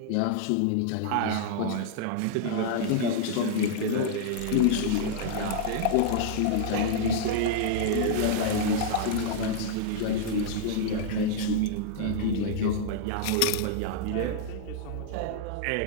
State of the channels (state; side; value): different; both; correlation -0.01